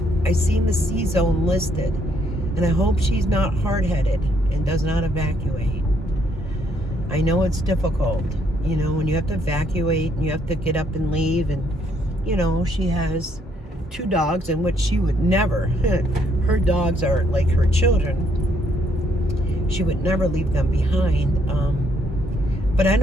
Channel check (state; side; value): normal; both; correlation 0.70